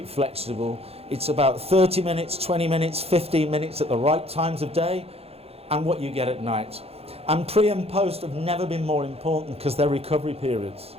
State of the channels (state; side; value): late; left; 0.29 ms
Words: flexible. It's about 30 minutes, 20 minutes, 15 minutes at the right times of day, and what you get at night. And pre and post have never been more important because they're recovery periods.